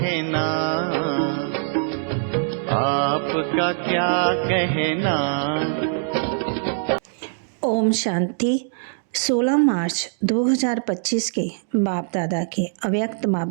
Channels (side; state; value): left; silent; digital silence